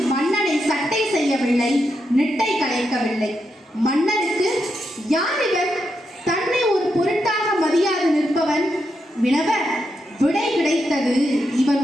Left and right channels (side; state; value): both; normal; correlation 0.84